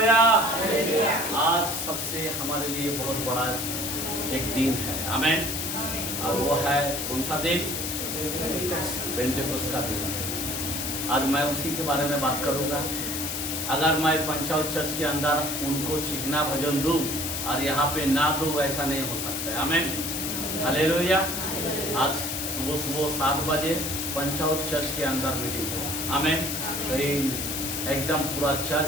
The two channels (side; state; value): left; noise; hiss, 3 dB below the sound